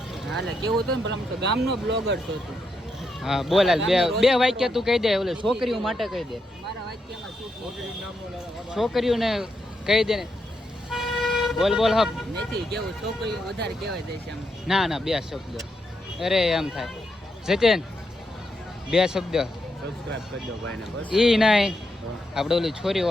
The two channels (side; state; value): both; normal; correlation 0.82